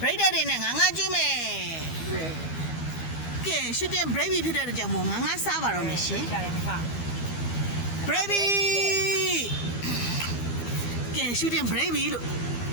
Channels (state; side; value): late; right; 12 ms